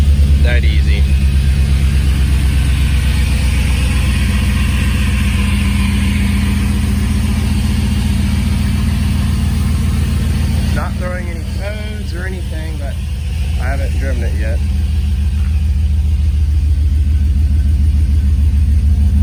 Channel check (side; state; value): both; identical; correlation 1.00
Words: That easy. Not throwing any codes or anything, but I haven't driven it yet.